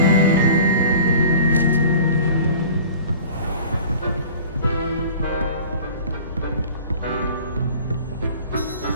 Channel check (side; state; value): both; inverted; correlation -0.44